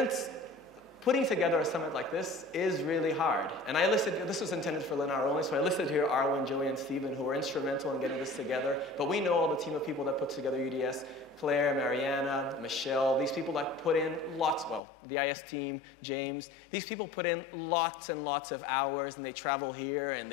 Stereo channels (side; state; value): right; drops out; at 14.8 s